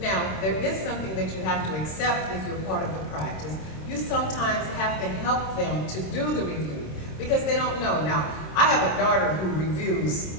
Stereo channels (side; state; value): right; late; 26 ms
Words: there is something that you have to accept if you're part of the practice. You sometimes have to help them to do the review, because they don't know. Now, I have a daughter who reviews